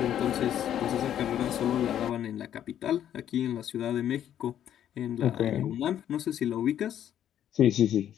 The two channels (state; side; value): quieter; right; 10.5 dB